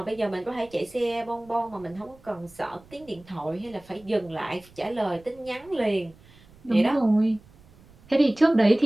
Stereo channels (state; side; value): noise; right; rumble, 26 dB below the sound